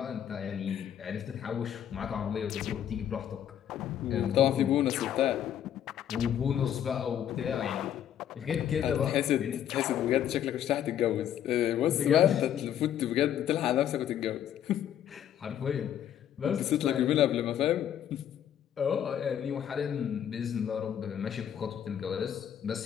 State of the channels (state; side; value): quieter; right; 10.1 dB